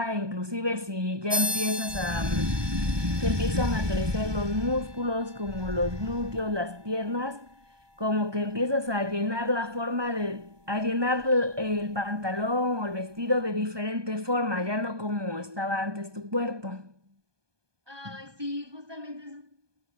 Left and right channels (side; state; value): left; late; 1.2 ms